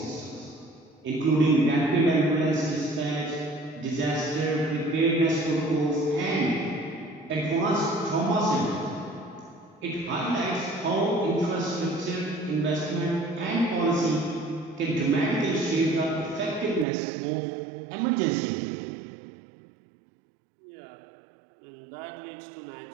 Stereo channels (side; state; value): left; drops out; at 16.9 s